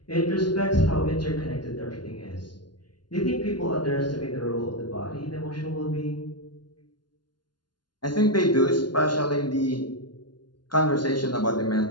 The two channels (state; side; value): late; right; 0.71 ms